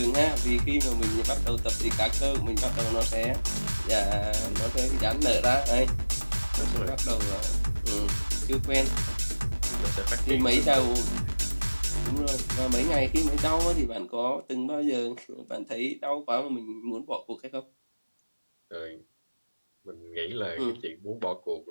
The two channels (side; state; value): both; inverted; correlation -1.00